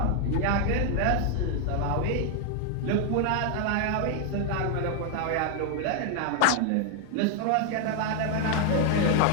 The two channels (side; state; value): both; different; correlation 0.00